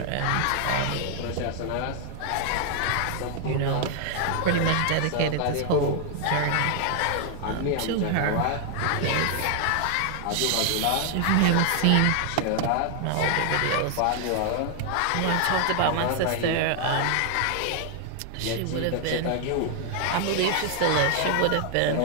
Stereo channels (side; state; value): both; different; correlation 0.00